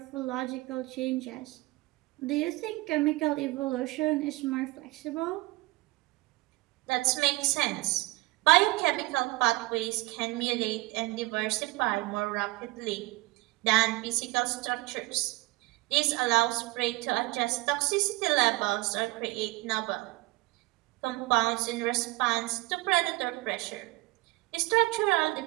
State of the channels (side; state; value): left; quieter; 21.9 dB